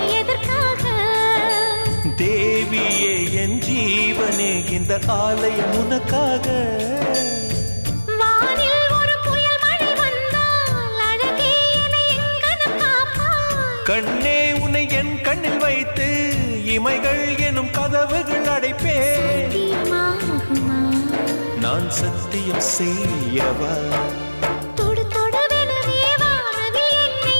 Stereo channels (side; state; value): both; inverted; correlation -1.00